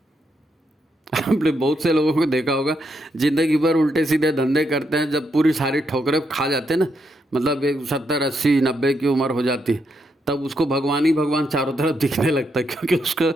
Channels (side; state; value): both; normal; correlation 0.79